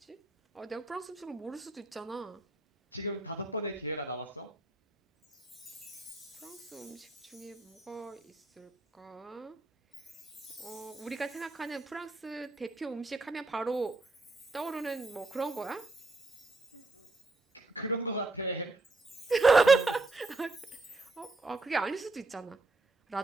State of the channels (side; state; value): left; quieter; 3.2 dB